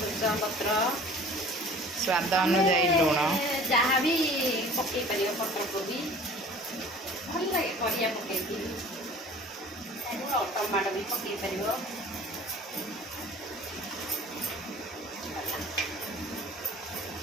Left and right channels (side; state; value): both; normal; correlation 0.46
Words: पत्र स्वाद अनुजाई लुण जहाँ भी पकई पार पत्र कोबी भल लगे परिया पकई टमाटो भी पकई पार